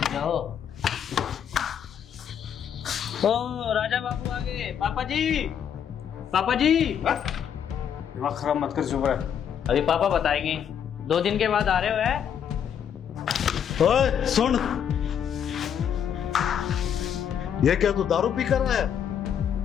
जाओ। ओ राजा बाबू आ गए। पापा जी, पापा जी। दिमाग खराब मत कर, चुप रह। अभी पापा बताएंगे। 2 दिन के बाद आ रहे हो है? ओए सुन, ये क्या तू दारू पी कर रहा है?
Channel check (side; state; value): right; quieter; 8.5 dB